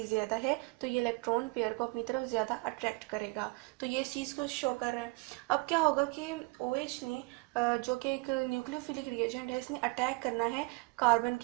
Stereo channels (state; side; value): quieter; left; 27.0 dB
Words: ज़्यादा है तो ये इलेक्ट्रॉन पेयर को अपनी तरफ ज़्यादा अट्रैक्ट करेगा। तो ये इस चीज़ को शो कर रहा है। अब क्या होगा कि OH ने जो कि एक न्यूक्लियोफिलिक रिएजेंट है, इसने अटैक करना है कार्बन